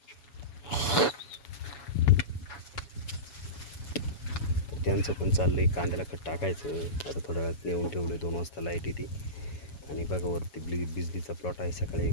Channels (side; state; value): right; late; 7.1 ms